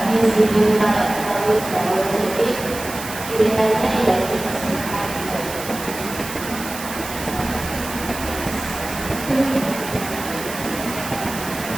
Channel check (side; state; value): right; noise; hiss, 10 dB below the sound